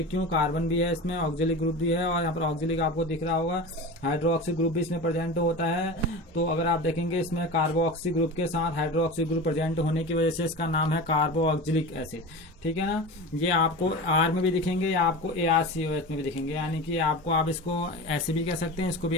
क्यों, कार्बन भी है इसमें, ऑक्सिलिक ग्रुप भी है, और यहाँ पर ऑक्सिलिक आपको दिख रहा होगा, हाइड्रोक्सी ग्रुप भी इसमें प्रेजेंट होता है। तो अगर आप देखेंगे इसमें कार्बोक्सी ग्रुप के साथ हाइड्रोक्सी ग्रुप प्रेजेंट होने की वजह से इसका नाम है कार्बोऑक्सिलिक एसिड। ठीक है ना, ये आपको R में भी दिखेंगे या आपको ARCOH में भी दिखेंगे, यानी कि आपको आप इसको ऐसे भी कह सकते हैं, इसको भी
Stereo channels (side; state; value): both; normal; correlation 0.29